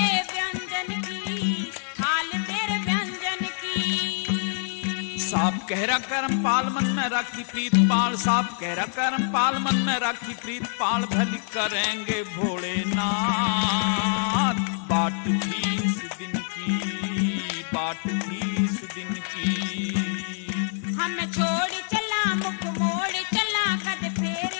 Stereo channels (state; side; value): silent; right; digital silence